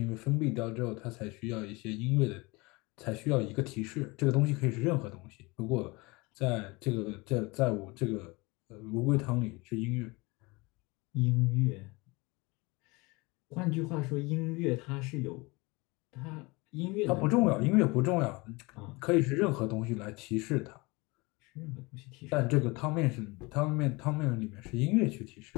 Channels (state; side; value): quieter; right; 25.1 dB